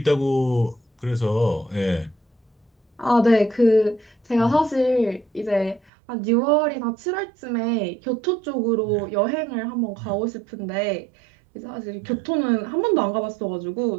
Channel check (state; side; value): drops out; left; at 5.9 s